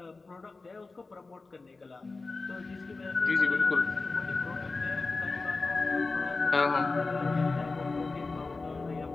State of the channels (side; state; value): right; quieter; 3.7 dB